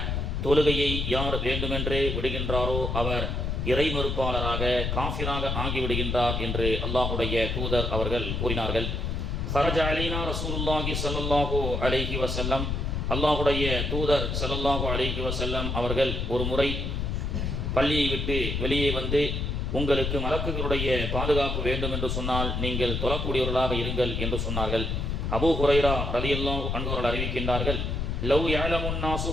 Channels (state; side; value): noise; left; rumble, 1 dB below the sound